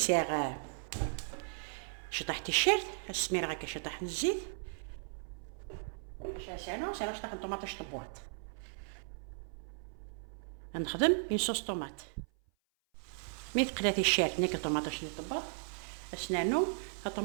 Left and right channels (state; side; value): silent; left; 54 dB below the other